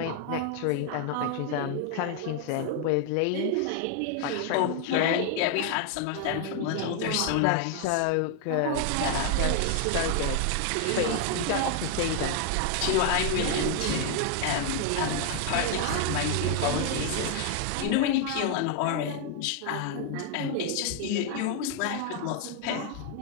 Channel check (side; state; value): both; different; correlation 0.00